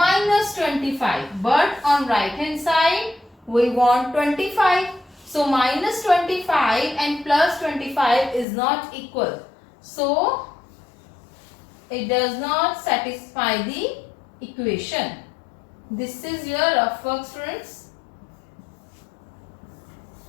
25. But on right hand side we want 25. So minus 25 and plus 25 is not equal. So it does not satisfy the equation. This is your rough work, students.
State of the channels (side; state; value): right; drops out; at 8.5 s